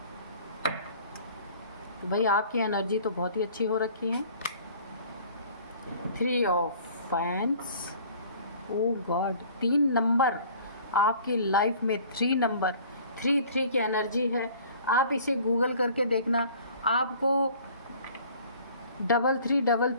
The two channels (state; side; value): inverted; both; correlation -0.50